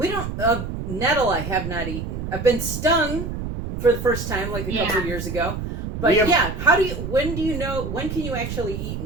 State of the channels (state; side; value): noise; right; rumble, 5 dB below the sound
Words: don't... nettle I have not eaten. I've been stung for the first time like a couple of years ago. But when can you actually eat